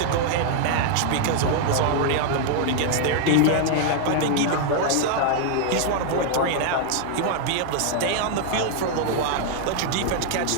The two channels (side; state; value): both; different; correlation 0.00